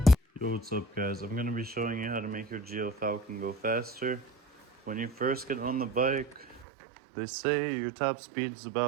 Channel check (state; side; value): drops out; left; at 6.7 s